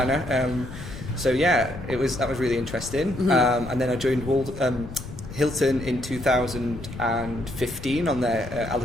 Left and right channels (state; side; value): noise; left; rumble, 11 dB below the sound